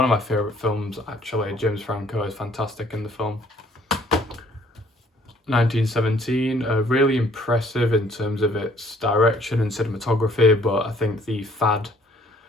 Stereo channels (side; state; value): both; normal; correlation 0.61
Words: of my favourite films, actually. James Franco is fantastic in the film. 1917, really impressive in terms of its direction and cinematography, but I think the fad